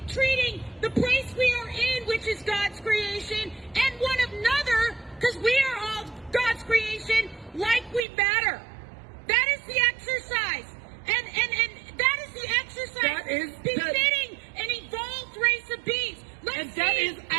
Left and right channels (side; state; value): left; drops out; at 8.1 s